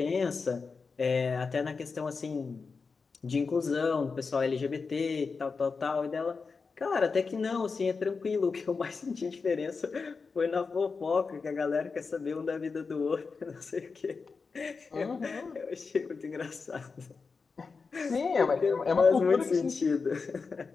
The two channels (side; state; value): right; quieter; 4.8 dB